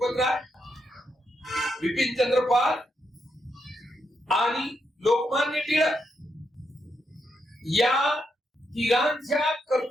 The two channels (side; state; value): both; normal; correlation 0.81